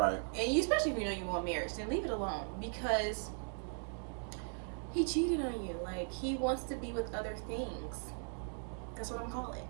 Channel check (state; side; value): silent; left; 52 dB below the other